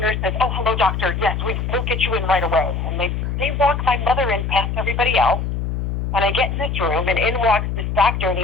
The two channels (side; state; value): left; noise; hum, 2 dB below the sound